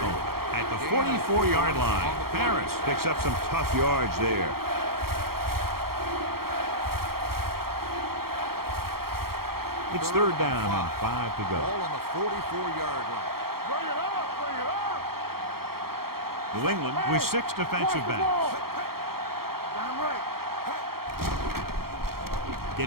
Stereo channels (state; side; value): late; left; 0.94 ms